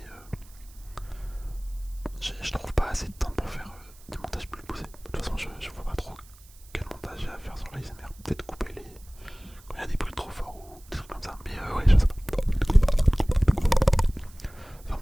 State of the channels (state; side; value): noise; right; hiss, 25 dB below the sound